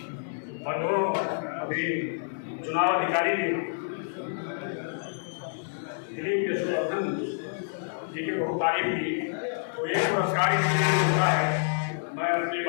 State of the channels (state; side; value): silent; right; digital silence